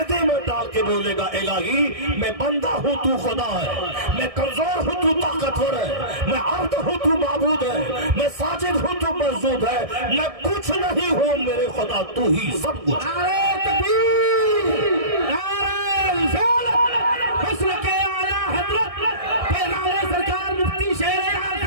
میں ڈال کے بولے گا الہی میں بندہ ہوں تو خدا ہے, میں کمزور ہوں تو طاقتور ہے, میں عبد ہوں تو معبود ہے, میں ساجد ہوں تو مسجود ہے, میں کچھ نہیں ہوں میرے خدا تو ہی سب کچھ. نعرہ تکبیر, نعرہ رسالت, مسلک اعلیٰ حضرت پیغمبر سرکار مفتی شیر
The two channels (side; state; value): left; late; 1.6 ms